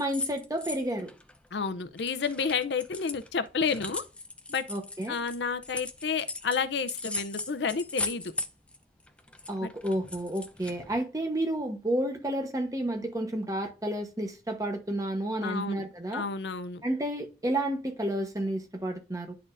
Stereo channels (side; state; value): both; normal; correlation 0.38